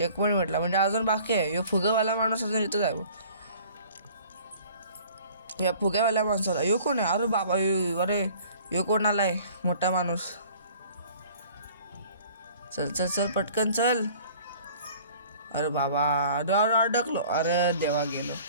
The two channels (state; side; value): inverted; both; correlation -0.50